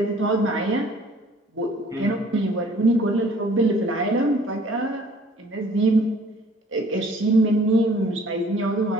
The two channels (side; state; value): both; normal; correlation 0.55